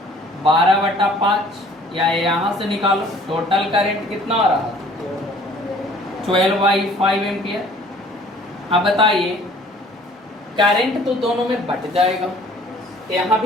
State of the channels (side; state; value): both; normal; correlation 0.54